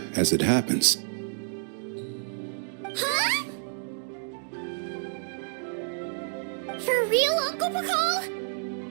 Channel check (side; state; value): left; silent; digital silence